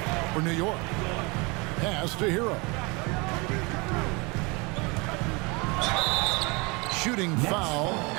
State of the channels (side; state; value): left; quieter; 27.7 dB